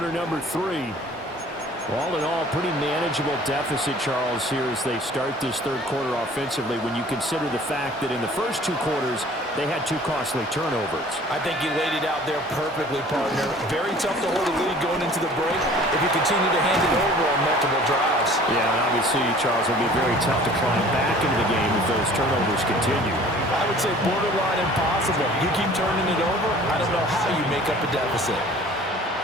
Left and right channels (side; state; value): both; normal; correlation 0.49